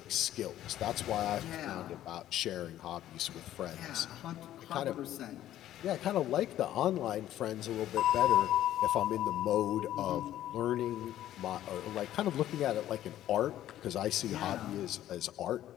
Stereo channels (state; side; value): quieter; right; 12.7 dB